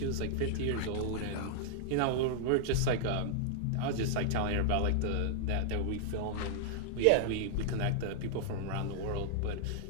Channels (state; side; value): different; both; correlation -0.01